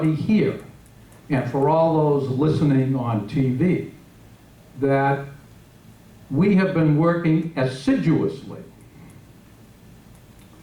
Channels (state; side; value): identical; both; correlation 1.00